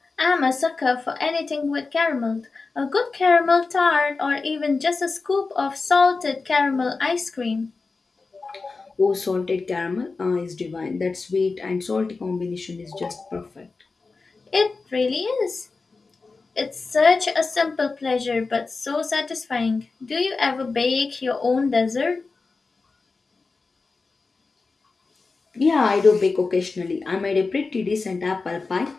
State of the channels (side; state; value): right; quieter; 4.1 dB